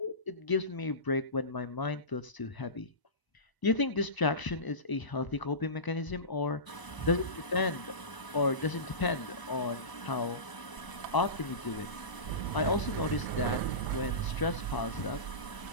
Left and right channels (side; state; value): right; late; 1.0 ms